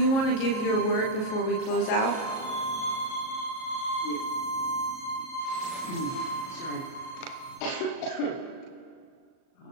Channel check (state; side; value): late; right; 37 ms